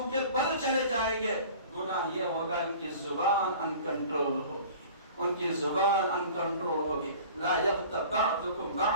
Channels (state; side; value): inverted; both; correlation -0.44